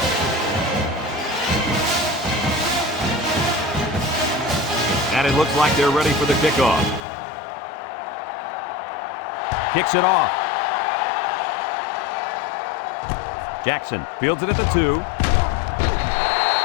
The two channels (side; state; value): right; drops out; at 7.0 s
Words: And it looks like they're ready for the kickoff. Kicks it off. Jackson fields it at the 2.